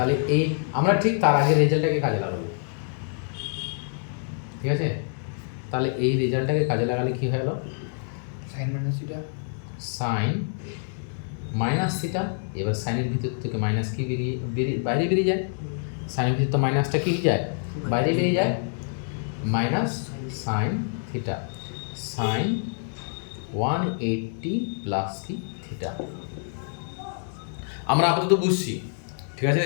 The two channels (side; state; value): right; silent; digital silence